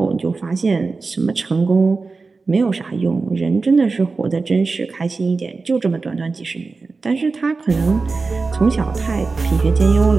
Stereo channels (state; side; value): quieter; left; 4.1 dB